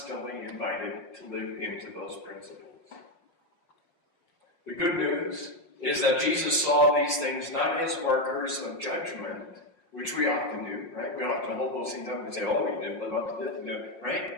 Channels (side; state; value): right; late; 5.6 ms